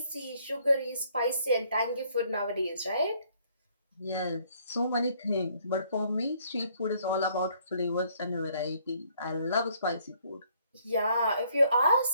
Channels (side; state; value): both; inverted; correlation -0.65